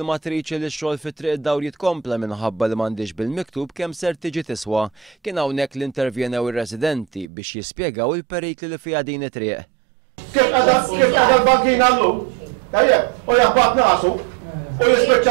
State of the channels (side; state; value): left; drops out; at 7.2 s